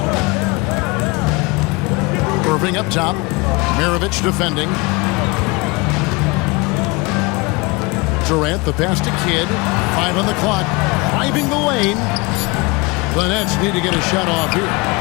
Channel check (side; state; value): right; quieter; 25.9 dB